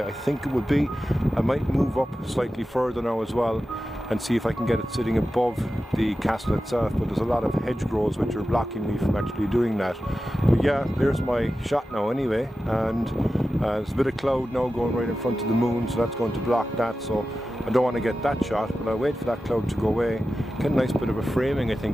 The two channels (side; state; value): both; normal; correlation 0.93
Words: I think it would be. I might move up slightly further now as well and see if I can get it sitting above the castle itself, but there's a lot of hedgerows which are blocking me from actually doing that. But yeah, there's my shot now anyway, and there's a bit of cloud now going right in front of the moon, so that's going to block that, so I don't want to get that shot, but I'll wait for that cloud to go away. Get a nice bit of a framing, I